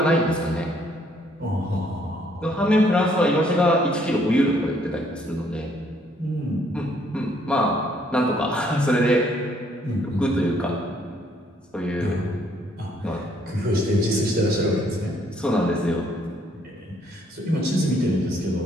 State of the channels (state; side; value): normal; both; correlation 0.66